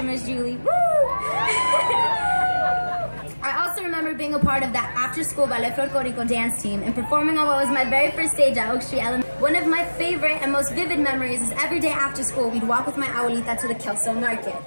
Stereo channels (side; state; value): both; inverted; correlation -1.00